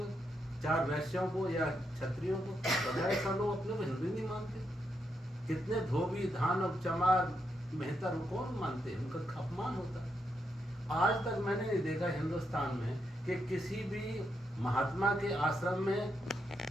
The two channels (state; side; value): normal; both; correlation 0.81